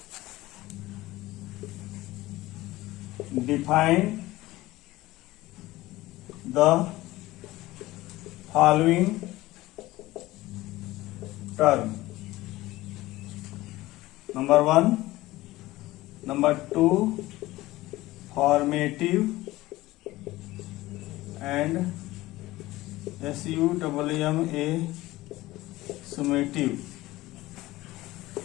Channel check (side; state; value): right; quieter; 18.0 dB